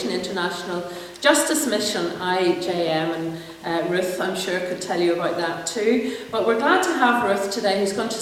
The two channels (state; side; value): identical; both; correlation 1.00